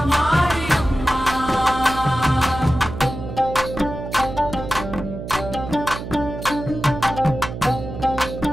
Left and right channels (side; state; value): right; noise; hum, 8 dB below the sound